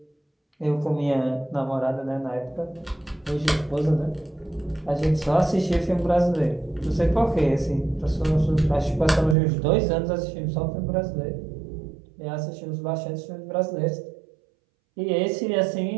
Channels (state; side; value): drops out; left; at 9.3 s